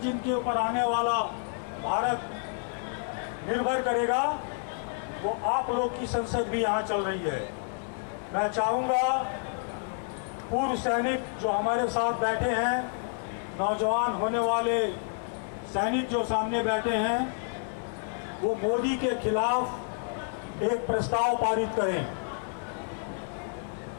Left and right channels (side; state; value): right; silent; 58 dB below the other